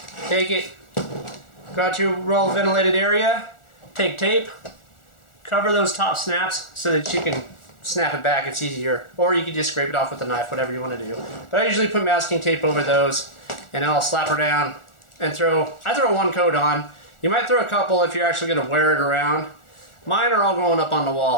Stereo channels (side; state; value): right; late; 1.4 ms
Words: Take it. Go out to a well ventilated area. Take tape. Cover those top snaps so that you can snap it back. It's easier. Or you can just scrape it off with a knife, whatever you want to do. But I usually put masking tape over those, and I'll slap her down and I throw one coat on. You might throw a couple if you're actually going to wear it around. Mine are all going up on the